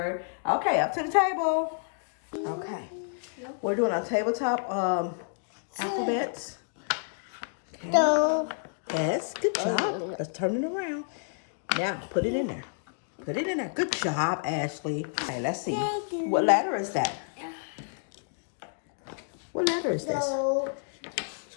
Okay, up to the table. Okay. We're doing our tabletop alphabets. Okay. Yes, good job. Let's turn it around. Now, put it in there. Put it in there. Good job, Ashley. Okay, let's see. What letter is that? What letter is this?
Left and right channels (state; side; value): silent; right; digital silence